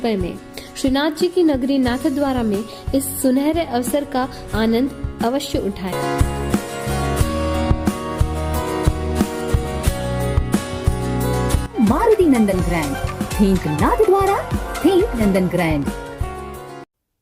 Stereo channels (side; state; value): both; identical; correlation 1.00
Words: में। श्रीनाथ जी की नगरी नाथद्वारा में इस सुनहरे अवसर का आनंद अवश्य उठाएं। मारुति नंदन ग्रैंड, थिंक नाथद्वारा, थिंक नंदन ग्रैंड।